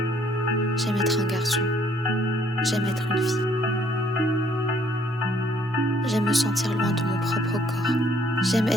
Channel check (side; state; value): both; normal; correlation 0.63